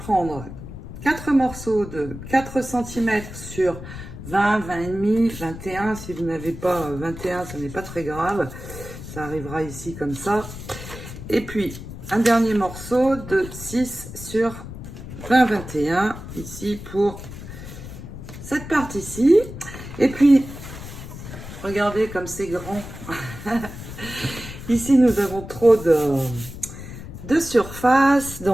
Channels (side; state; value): left; noise; rumble, 12 dB below the sound